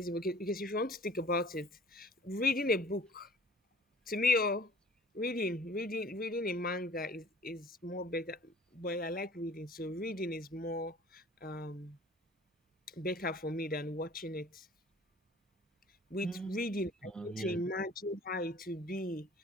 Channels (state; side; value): normal; both; correlation 0.49